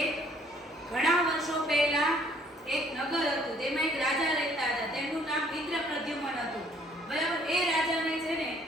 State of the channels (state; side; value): normal; both; correlation 0.61